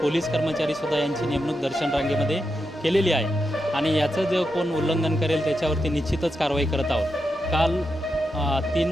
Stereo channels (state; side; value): normal; both; correlation 0.86